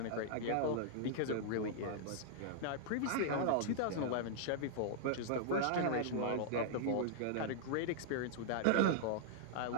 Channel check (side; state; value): both; different; correlation -0.01